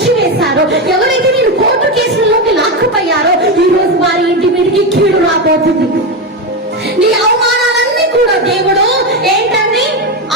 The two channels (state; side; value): normal; both; correlation 0.13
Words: వేశారో, ఎవరైతే నేను కోర్టు కేసులలోకి లాక్కుపోయారో, ఈ రోజు వారి ఇంటి మీదకి కీడు రాబోతుంది. నీ అవమానాలన్నీ కూడా దేవుడు ఏంటండి?